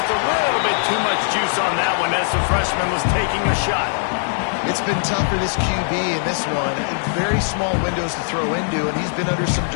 a little bit too much juice on that one as the freshman was taking a shot. It's been tough for this QB in this one. Very small windows to throw into, and he's been under some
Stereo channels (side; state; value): right; silent; digital silence